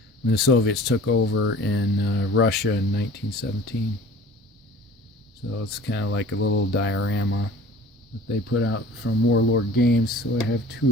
when the Soviets took over in Russia in 1917. So it's kind of like a little diorama that they put out from Warlord Games. So I have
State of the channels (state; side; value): normal; both; correlation 0.44